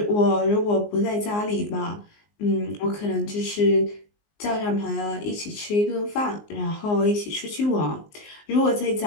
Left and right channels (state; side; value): late; right; 19 ms